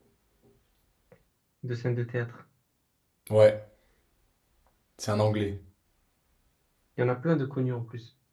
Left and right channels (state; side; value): identical; both; correlation 1.00